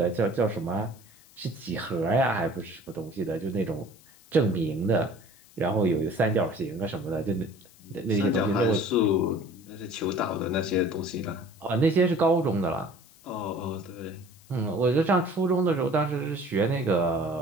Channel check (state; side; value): noise; left; hiss, 26 dB below the sound